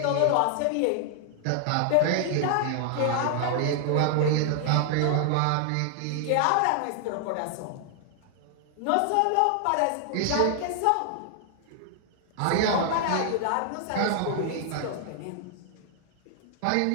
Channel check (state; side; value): different; both; correlation 0.00